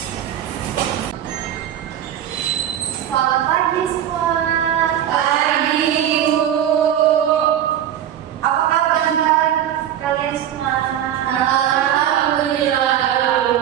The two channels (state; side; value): quieter; left; 10.7 dB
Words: Selamat pagi semua. Pagi, Bu. Apa kabar kalian semua? Alhamdulillah,